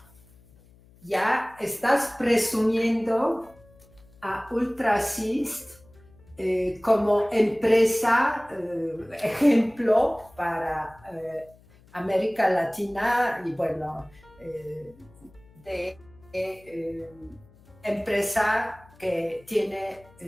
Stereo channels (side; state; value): left; noise; hum, 27 dB below the sound